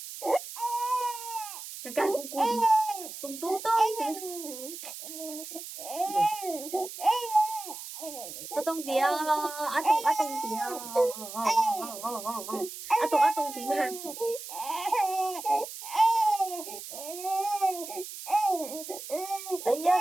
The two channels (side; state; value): right; noise; hiss, 11 dB below the sound